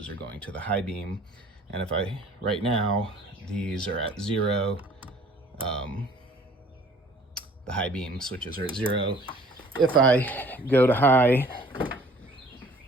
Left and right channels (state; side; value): normal; both; correlation 0.53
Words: are going to the high beam. And if I, right now, these are at 0. The high beam switches are at 0. If I go to high,